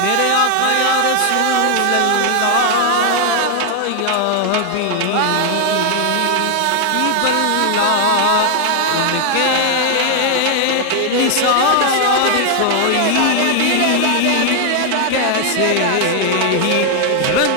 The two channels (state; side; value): different; both; correlation 0.00